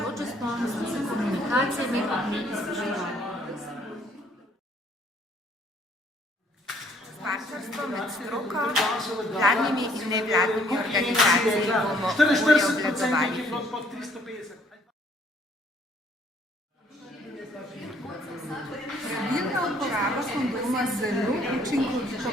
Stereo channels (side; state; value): both; normal; correlation 0.63